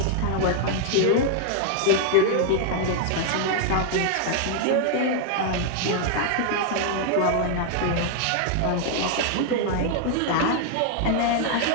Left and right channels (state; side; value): different; both; correlation 0.00